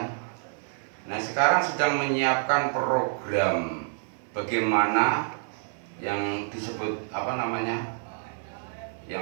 Nah sekarang sedang menyiapkan program bagaimana yang disebut apa namanya,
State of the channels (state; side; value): silent; left; 59 dB below the other